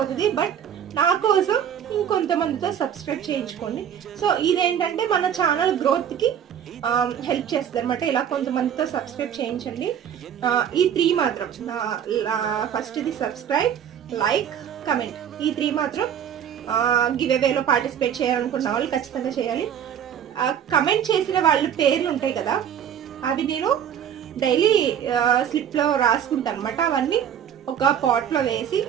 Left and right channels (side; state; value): left; quieter; 9.1 dB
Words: బట్ నా కోసం ఇంకొంతమందితో సబ్స్క్రైబ్ చేయించుకోండి. సో ఇదేంటంటే మన ఛానల్ గ్రోత్కి హెల్ప్ చేస్తుంది అనమాట. ఇలా కొంతమందితో సబ్స్క్రైబ్ చేయించండి. ఈ 3 మాత్రం, ఫస్ట్ ఇది సబ్స్క్రైబ్, లైక్, కమెంట్, ఈ 3 మాత్రం గివ్ అవేలో పార్టిసిపేట్ చేయాలనుకున్న వాళ్ళు ఖచ్చితంగా చేయాలి. కమెంట్ చేసిన వాళ్ళ పేర్లు ఉంటాయి కదా, అవి నేను డైలీ స్లిప్లో రాసుకుంటాను అనమాట. అవన్నీ ఒక పాట్లో వేసి